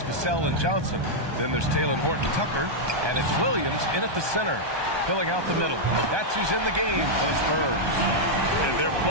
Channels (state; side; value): late; left; 1.2 ms